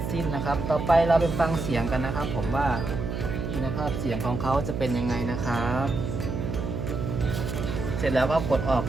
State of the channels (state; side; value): noise; right; hum, 4 dB below the sound